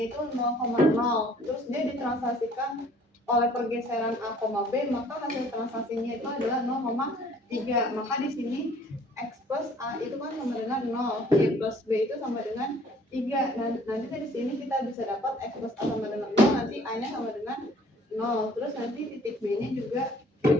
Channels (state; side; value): normal; both; correlation 0.56